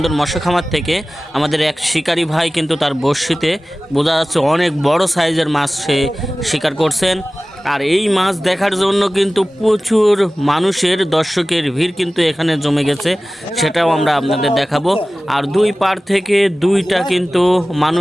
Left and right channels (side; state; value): both; normal; correlation 0.97